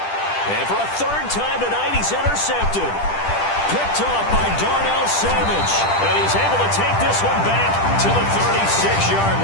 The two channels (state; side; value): late; right; 10 ms